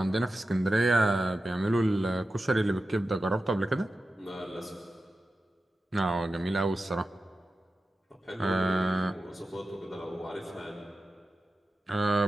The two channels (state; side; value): normal; both; correlation 0.92